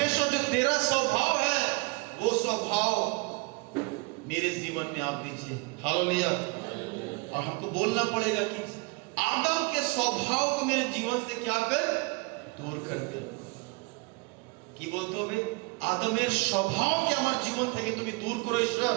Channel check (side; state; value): left; quieter; 27.8 dB